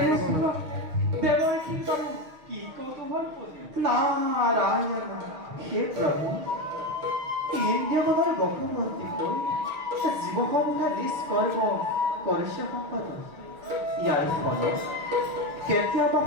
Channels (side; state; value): left; late; 6.4 ms